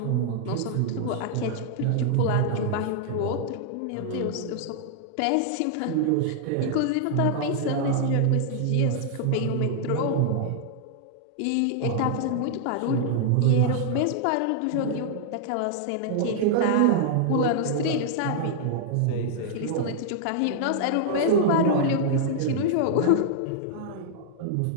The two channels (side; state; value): both; different; correlation -0.01